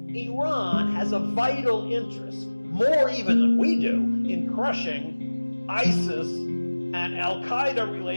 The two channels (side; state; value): both; inverted; correlation -1.00